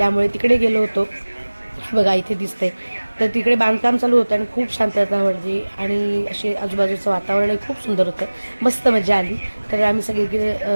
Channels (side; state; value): both; inverted; correlation -1.00